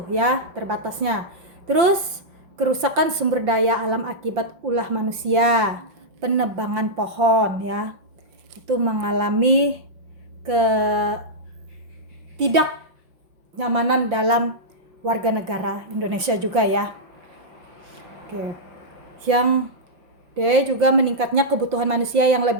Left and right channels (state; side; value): late; left; 5.8 ms